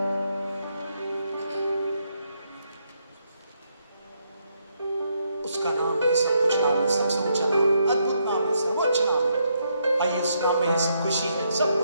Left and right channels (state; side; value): inverted; both; correlation -0.76